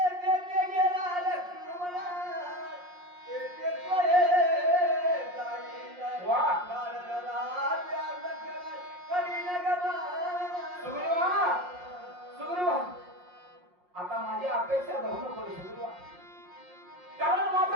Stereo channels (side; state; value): left; late; 5.6 ms